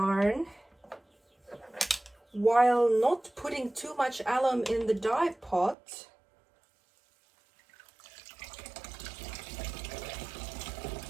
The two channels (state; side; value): drops out; left; at 5.8 s